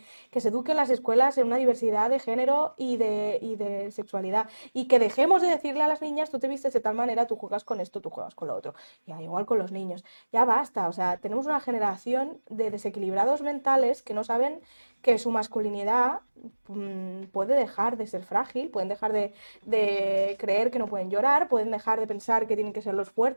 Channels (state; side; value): inverted; both; correlation -1.00